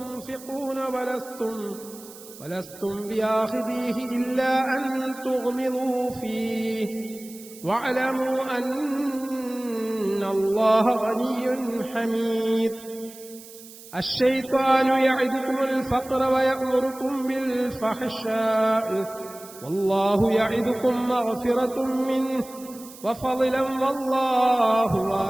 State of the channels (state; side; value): noise; right; hiss, 18 dB below the sound